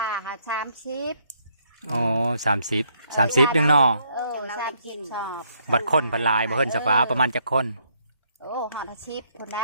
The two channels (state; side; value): inverted; both; correlation -0.70